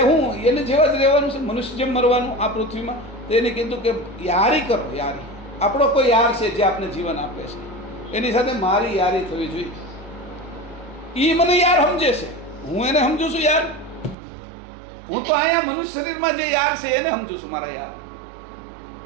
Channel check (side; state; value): left; drops out; at 14.2 s